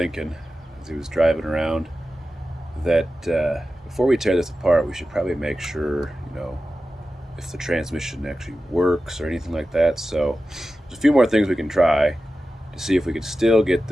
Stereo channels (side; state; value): both; normal; correlation 0.94